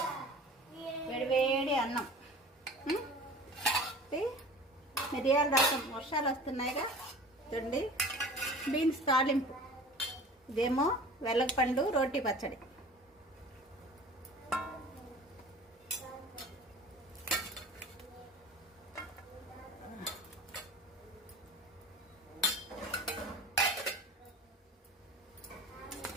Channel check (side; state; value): both; normal; correlation 0.41